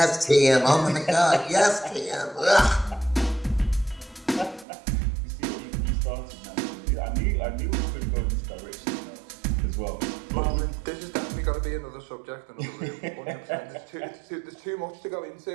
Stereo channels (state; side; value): drops out; left; at 4.7 s